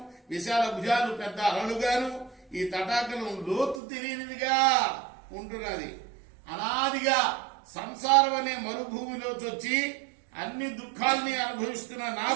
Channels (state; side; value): drops out; left; at 3.8 s